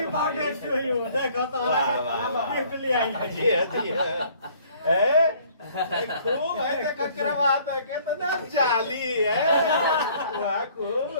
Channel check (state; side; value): inverted; both; correlation -0.57